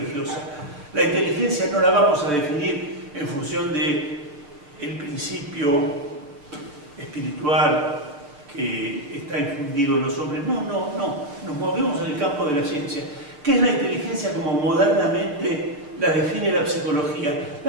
La inteligencia no la vamos a definir en función del principio espiritual que está infundido en los hombres. No. Nos movemos en el campo de la ciencia. ¿Qué es la inteligencia como modernamente la define la psicología?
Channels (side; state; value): left; late; 6.8 ms